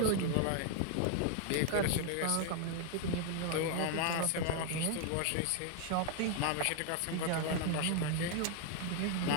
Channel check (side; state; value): both; different; correlation 0.00